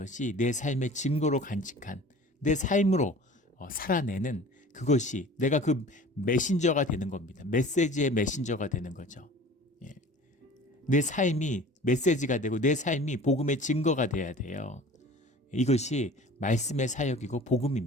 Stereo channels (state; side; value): normal; both; correlation 0.43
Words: 내 삶의 증거로 간직한 내 삶으로 살아내는 그것이 내가 그 메신저가 되는 겁니다. 메시지의 메신저가 되는 거죠. 내 삶이 메시지가 되고 내 삶이 복음의 증거가 돼야 돼요. 이것이 말씀의 사역이고